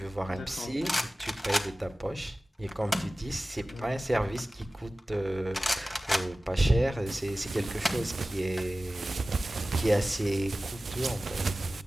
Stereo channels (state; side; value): normal; both; correlation 0.96